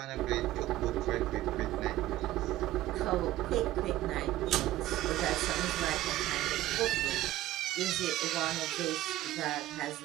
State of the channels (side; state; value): left; quieter; 15.3 dB